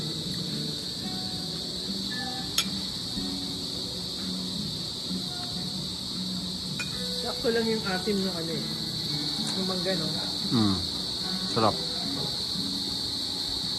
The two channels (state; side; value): identical; both; correlation 1.00